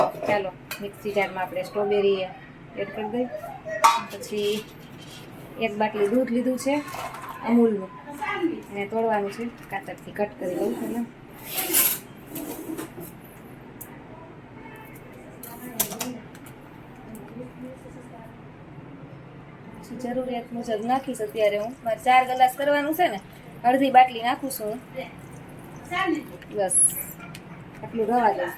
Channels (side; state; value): both; identical; correlation 1.00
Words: ચાલો મિક્સી જારમાં આપણે સ્ટ્રોબેરી એડ કરી દઈએ. પછી એક બાટલી દૂધ લીધું છે અમૂલનું, એને તોડવાનું છે, કાતરથી કટ કરી દઉં પહેલાં. જરૂરિયાત મુજબ નાખીશ. અત્યારે હું મારે 4 ગ્લાસ કરવાનું છે ને, અડધી બાટલી નાખું છું હું. બસ આટલું રવા